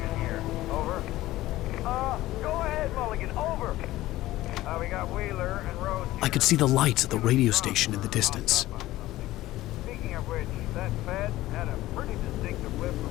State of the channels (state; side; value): quieter; right; 16.4 dB